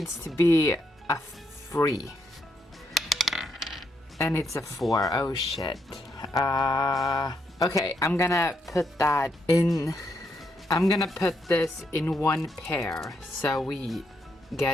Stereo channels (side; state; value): both; normal; correlation 0.78